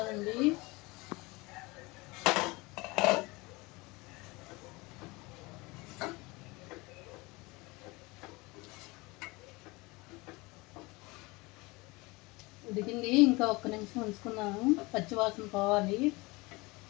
ఉడికింది, ఇంకా ఒక్క నిమిషం ఉంచుకున్నాము, పచ్చివాసన పోవాలి.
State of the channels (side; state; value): right; quieter; 24.1 dB